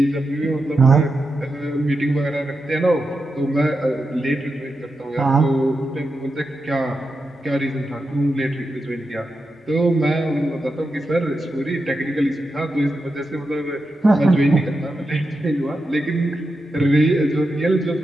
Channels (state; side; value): normal; both; correlation 0.88